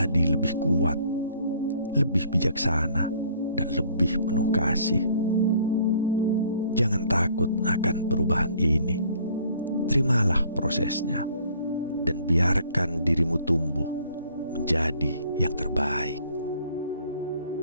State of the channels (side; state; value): both; inverted; correlation -0.59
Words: lebih kuat, lebih bijaksana, dan lebih penuh kasih. Jangan takut akan perubahan ini. Terimalah prosesnya dan biarkan dirimu tumbuh menjadi yang terbaik.